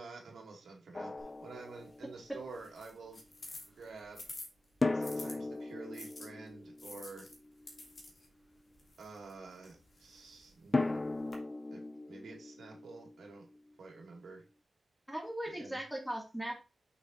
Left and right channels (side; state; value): both; normal; correlation 0.96